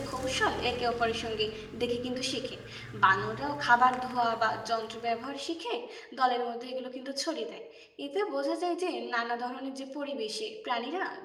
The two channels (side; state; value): both; identical; correlation 1.00